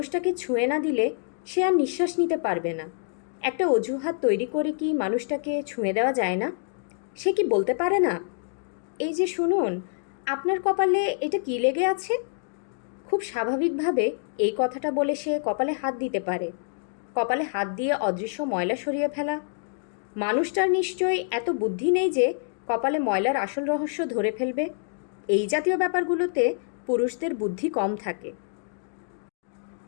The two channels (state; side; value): silent; right; digital silence